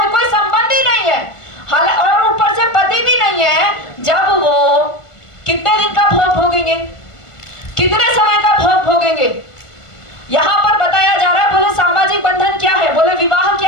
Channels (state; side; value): late; right; 1.5 ms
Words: संबंधी नहीं है, और ऊपर से पति भी नहीं है। जब वो कितने दिन का भोग भोगेंगे? कितने समय का भोग भोगेंगे? यहाँ पर बताया जा रहा है। बोले सामाजिक बंधन क्या है? बोले विवाह